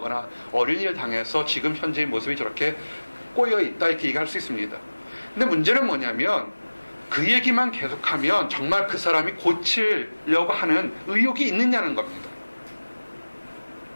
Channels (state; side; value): inverted; both; correlation -1.00